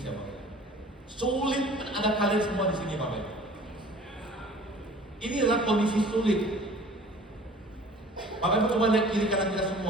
Bapak. Sulit, ada kalian semua di sini, Bapak. Ini adalah kondisi sulit. Bapak Ibu coba lihat kiri kanan kita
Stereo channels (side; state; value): both; normal; correlation 0.47